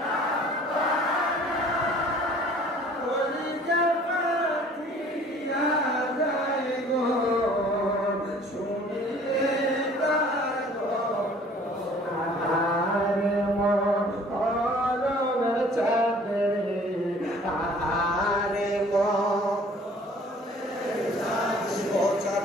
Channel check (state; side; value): normal; both; correlation 0.52